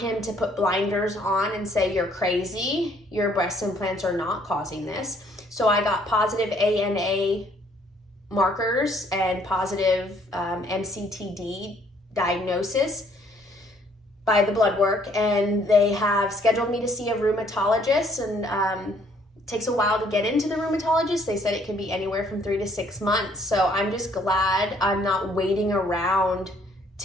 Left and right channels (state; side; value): normal; both; correlation 0.64